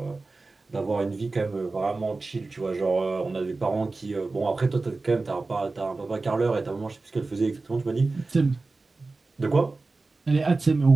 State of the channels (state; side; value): quieter; left; 3.6 dB